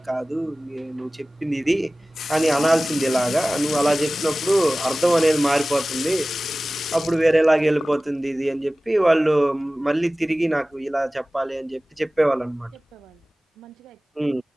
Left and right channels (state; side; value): normal; both; correlation 0.97